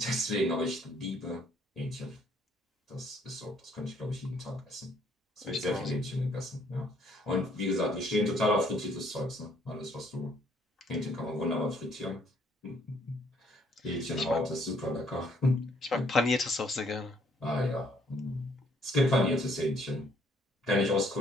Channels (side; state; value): both; normal; correlation 0.65